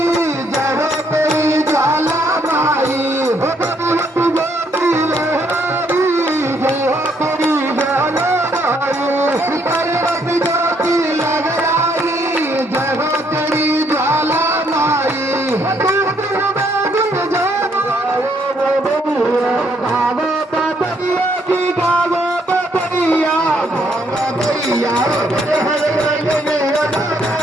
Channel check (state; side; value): normal; both; correlation 0.70